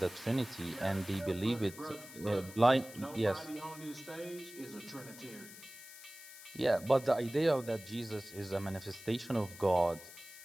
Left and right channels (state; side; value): noise; left; hiss, 16 dB below the sound